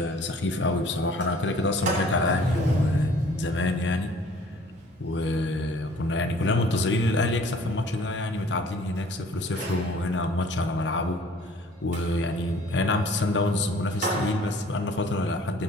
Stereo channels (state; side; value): normal; both; correlation 0.53